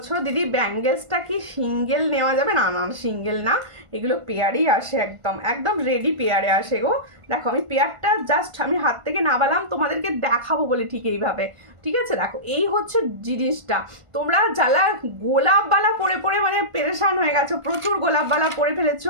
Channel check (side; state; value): left; late; 1.5 ms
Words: দিদি, ব্যাঙ্গেলসটা কি সিঙ্গেল নেওয়া যাবে? না না সিঙ্গেল না, এগুলো পেয়ারই আসে, একদম একদম রেডি পেয়ারে আসে গো। দেখো আমি পেয়ারটা জাস্ট আমি হাত থেকে নামালাম তোমাদেরকে দেখাবো বলে, ঠিক এইভাবে, ঠিক আছে? দেখো এই হচ্ছে জিনিসটা। তোমরা যারা গোলাপবালা পরে পরে মানে পেরেশান হয়ে গেছো, প্রচুর গোলাপবালা পরে